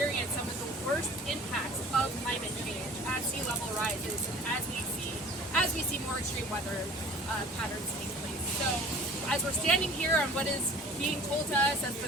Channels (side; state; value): both; normal; correlation 0.46